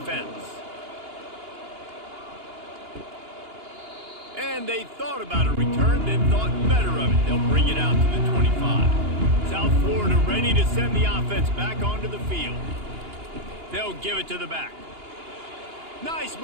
And they thought about a return, then thought better of it. They'll bring it out to the 25. South Florida ready to send the offense back onto the field. They'll give it to the back. Nice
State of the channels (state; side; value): late; left; 2.8 ms